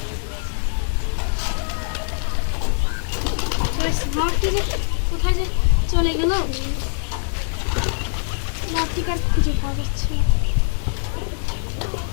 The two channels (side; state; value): right; silent; digital silence